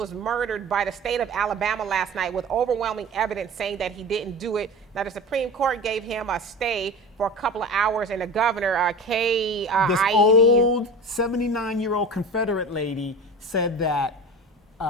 murdered by the state of Alabama last night with overwhelming evidence saying that he didn't do it. Now, the Supreme Court gave him a stay for a couple of hours, and the governor, this old 79-year-old Confederate lady said that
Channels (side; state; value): both; normal; correlation 0.33